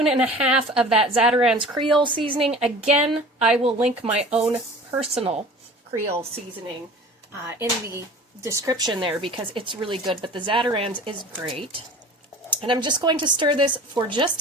and a half of that Zatarain's Creole seasoning. Again, I will link my own personal Creole seasoning in the description there because it's really good, but the Zatarain's is great. And I'm just going to stir this for just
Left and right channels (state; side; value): normal; both; correlation 0.42